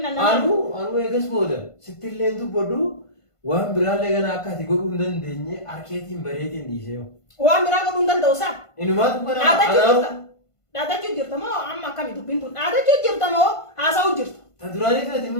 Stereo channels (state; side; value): late; right; 1.5 ms